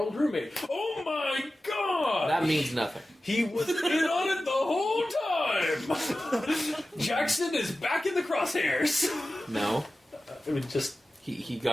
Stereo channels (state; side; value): normal; both; correlation 0.95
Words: roommate. Oh my god! That means nothing. He was in on it the whole time! Jackson is back in the crosshairs! No. I mean, just... He